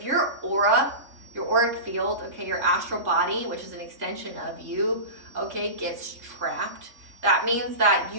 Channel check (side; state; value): left; late; 3.5 ms